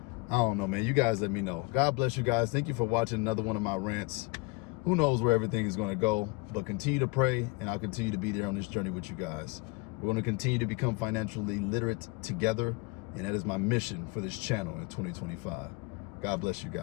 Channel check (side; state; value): right; quieter; 25.9 dB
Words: I don't know, man. You guys let me know. God bless you guys. Thank you for watching another one of my rants. Who knows where everything is going to go, but continue to pray, and I'll continue to be there on this journey with you guys. We're going to continue to become financially literate together, and that is my mission for this channel in 2025. God bless you